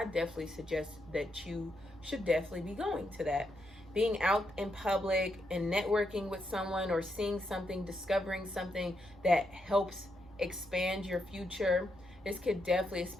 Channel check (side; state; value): both; normal; correlation 0.81